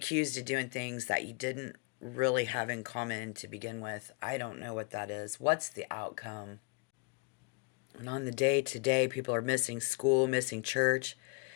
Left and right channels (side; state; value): right; quieter; 32.1 dB